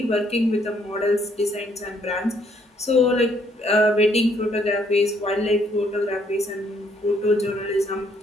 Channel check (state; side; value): normal; both; correlation 0.68